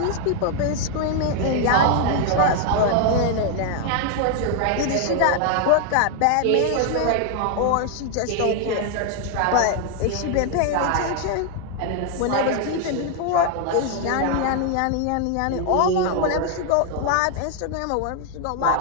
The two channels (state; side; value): different; both; correlation 0.00